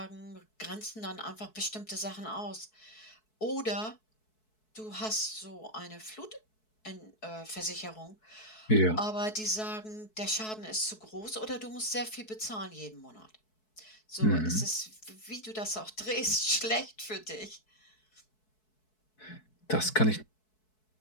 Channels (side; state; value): right; late; 4.6 ms